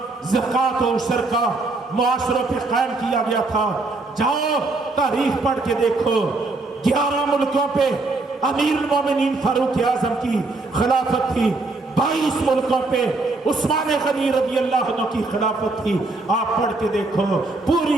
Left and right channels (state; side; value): quieter; left; 3.4 dB